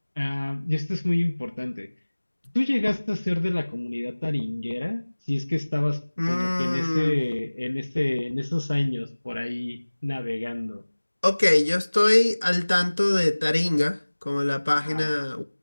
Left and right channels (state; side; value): inverted; both; correlation -1.00